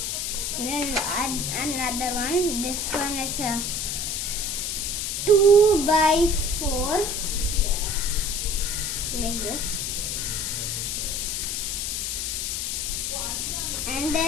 Then add another one. This one is a 2x4 like this. And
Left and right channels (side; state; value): left; noise; hiss, 1 dB below the sound